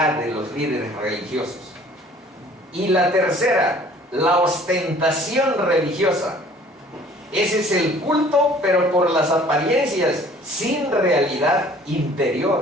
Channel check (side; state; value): both; normal; correlation 0.53